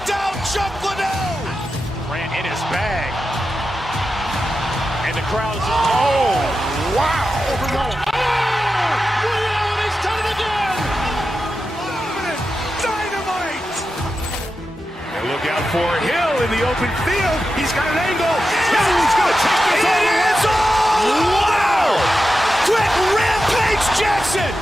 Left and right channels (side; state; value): both; normal; correlation 0.91